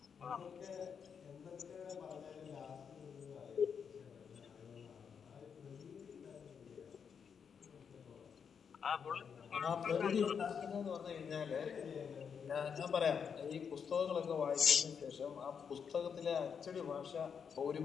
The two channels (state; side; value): quieter; right; 6.8 dB